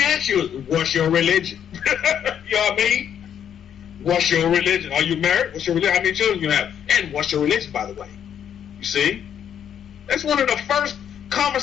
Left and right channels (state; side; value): quieter; right; 9.0 dB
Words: ask you is, what's your religion? You know what I mean? What's your religion? Are you married? What's your religion? How many children you have? And what's your religion, by the way? You see? That's one of the first